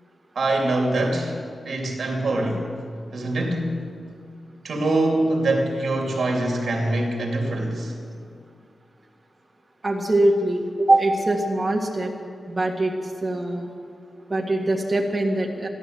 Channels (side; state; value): both; normal; correlation 0.93